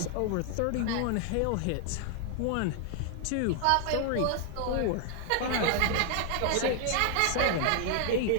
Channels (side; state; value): both; different; correlation 0.00